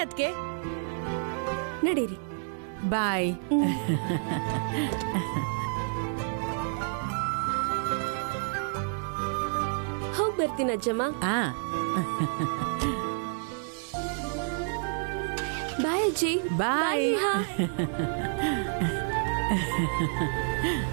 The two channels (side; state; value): left; silent; 58 dB below the other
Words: ಅದ್ಕೆ. ನಡೀರಿ. ಬಾಯ್. ಹೋಗ್ ಬರ್ತೀನಿ ಅಜ್ಜಮ್ಮ. ಬಾಯ್ ಅಜ್ಜಿ. ಬಾಯ್.